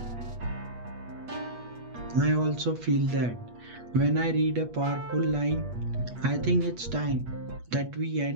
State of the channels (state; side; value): late; left; 8.3 ms